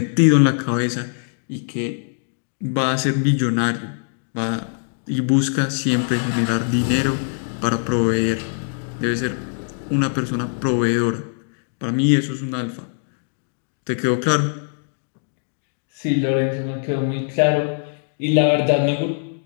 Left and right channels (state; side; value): silent; right; digital silence